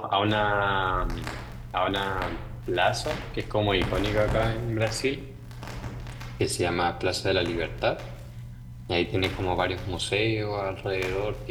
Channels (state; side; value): identical; both; correlation 1.00